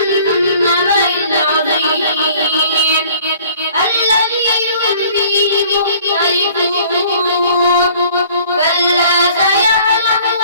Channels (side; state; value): both; inverted; correlation -0.53